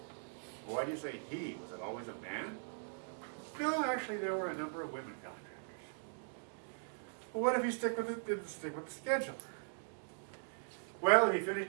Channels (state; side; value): silent; left; digital silence